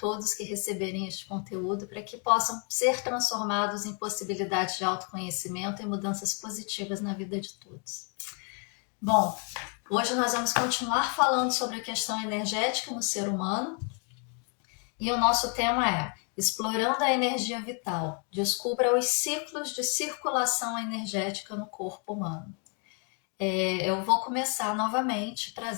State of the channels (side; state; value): right; quieter; 38.4 dB